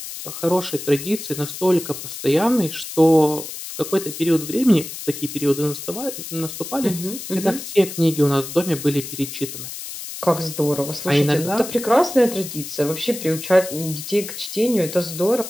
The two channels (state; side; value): noise; left; hiss, 9 dB below the sound